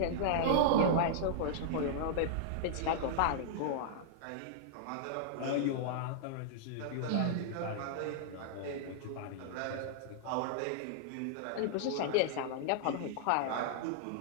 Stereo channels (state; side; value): different; both; correlation -0.01